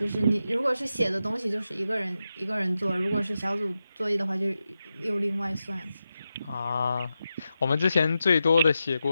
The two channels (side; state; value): both; inverted; correlation -0.90